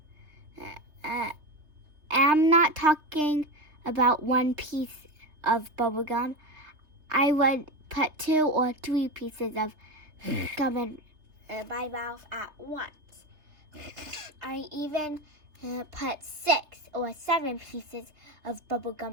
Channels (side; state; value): left; late; 3.3 ms